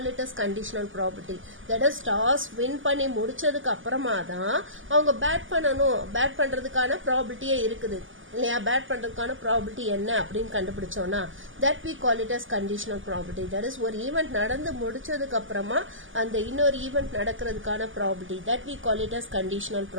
it as conditional probability. That is toss win பண்ணி முடிச்சதுக்கு அப்புறமா தான் அவங்க பேட் பண்ணணும். பேட் பண்றதுக்கான probability இருக்குது இல்லையா? பேட் பண்றதுக்கான probability என்ன அப்படின்னு கண்டுபிடிச்சோம்னா that we call it as conditional probability. That is ஒரு ஈவென்ட் நடந்து முடிச்சதுக்கு அப்புறமா அந்த இன்னொரு ஈவென்ட் நடக்கிறதுக்கான probability, that we call it as conditional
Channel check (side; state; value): left; late; 0.58 ms